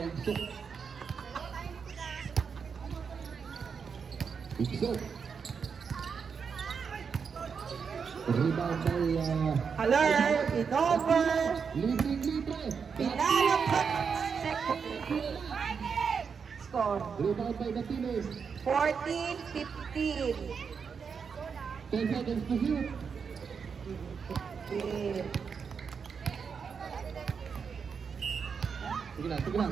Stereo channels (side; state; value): left; quieter; 6.1 dB